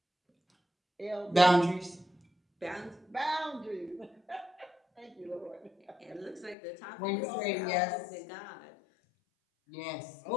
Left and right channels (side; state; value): right; drops out; at 6.6 s